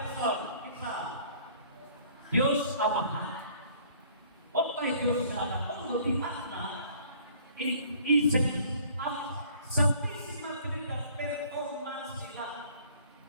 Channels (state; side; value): inverted; both; correlation -0.55